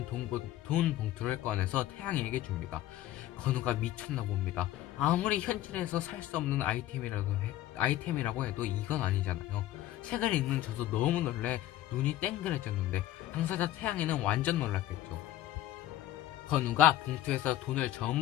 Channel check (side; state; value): right; quieter; 13.7 dB